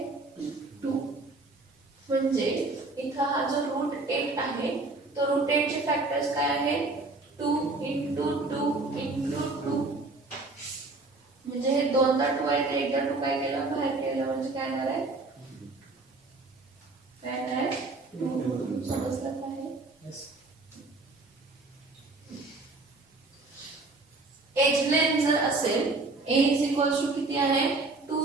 म्हणजे इथं हा जो रूट 8 आहे तो रूट 8 चे फॅक्टर्स काय आहेत 2 into 2 into 2 म्हणजे हे दोनदा 2 आहे ते एकदा 2 काय केलं बाहेर केलं म्हणजे काय येणार आहे काय येणार आहे 2 समजलं काय एज लेंथ जर असेल a इज इक्वल्स टू किती आहे 2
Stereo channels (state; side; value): quieter; left; 3.3 dB